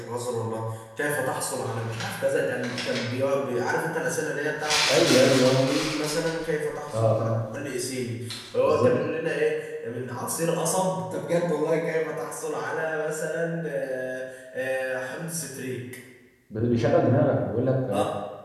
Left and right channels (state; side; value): identical; both; correlation 1.00